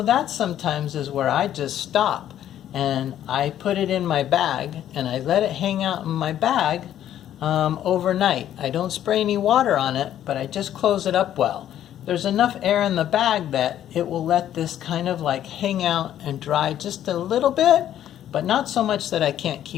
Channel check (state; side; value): quieter; right; 11.3 dB